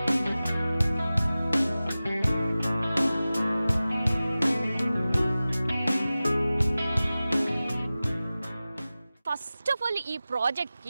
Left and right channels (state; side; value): inverted; both; correlation -0.96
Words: ఫస్ట్ ఆఫ్ ఆల్ ఈ